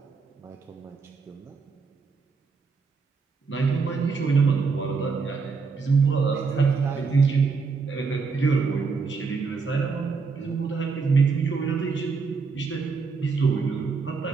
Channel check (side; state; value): left; quieter; 4.9 dB